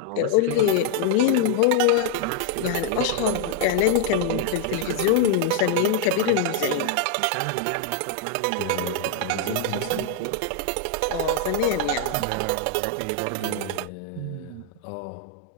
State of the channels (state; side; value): different; both; correlation 0.00